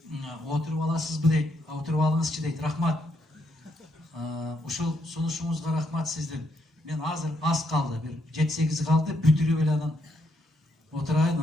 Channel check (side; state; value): both; normal; correlation 0.76